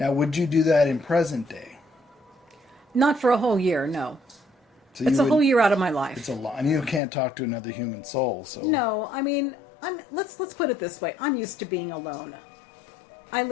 would you do that in present day? Not for a whole year, no. So it's a whole year out of my life. It's a lot, and you can't talk to another human soul. So no, I mean, let's put it this way: I'm used to being alone. I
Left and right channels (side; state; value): right; drops out; at 7.0 s